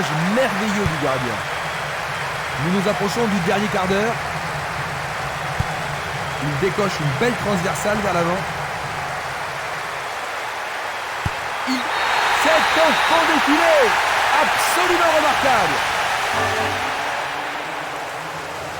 merveilleux du gardien. Nous nous approchons du dernier quart d'heure. Il décoche une belle transversale vers l'avant. C'est un fond défilé absolument remarquable.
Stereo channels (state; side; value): identical; both; correlation 1.00